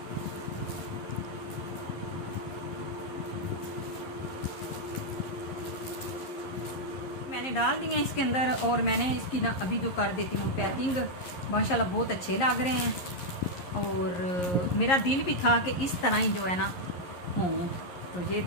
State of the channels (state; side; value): late; right; 11 ms